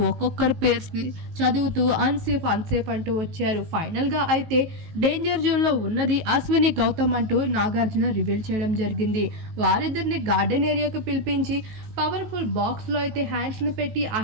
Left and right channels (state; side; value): late; left; 19 ms